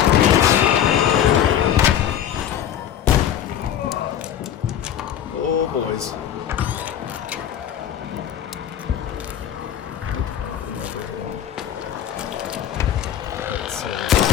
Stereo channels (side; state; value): right; quieter; 10.1 dB